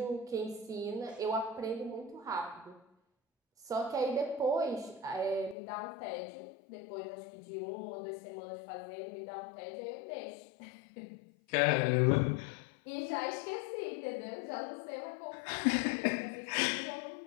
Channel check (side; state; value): right; drops out; at 5.6 s